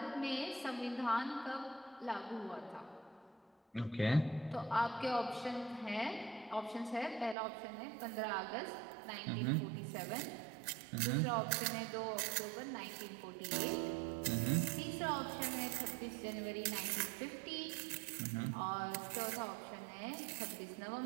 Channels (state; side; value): drops out; left; at 7.4 s